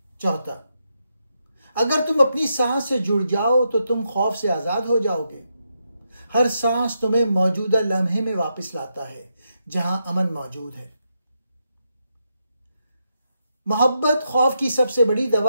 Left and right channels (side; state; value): both; inverted; correlation -0.83